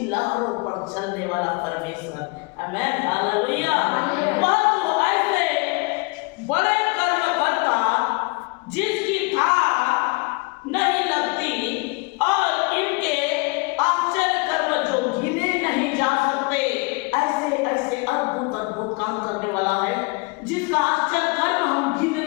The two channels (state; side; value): quieter; right; 28.8 dB